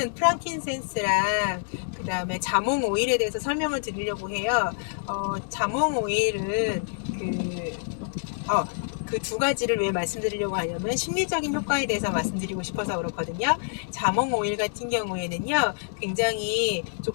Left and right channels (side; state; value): right; silent; digital silence